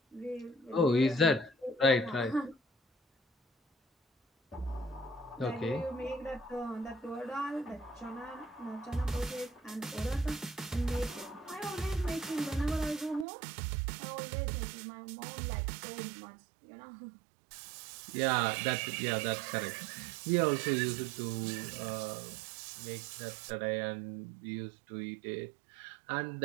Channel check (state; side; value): drops out; left; at 13.2 s